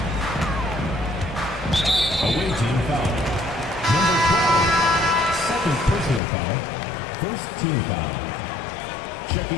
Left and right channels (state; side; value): drops out; right; at 6.2 s